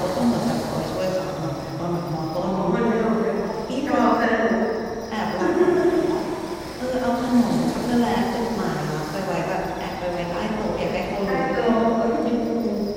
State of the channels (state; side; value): identical; both; correlation 1.00